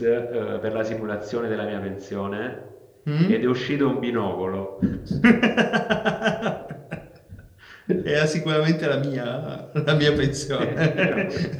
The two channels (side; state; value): both; identical; correlation 1.00